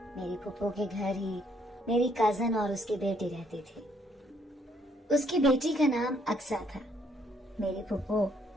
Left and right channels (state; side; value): normal; both; correlation 0.68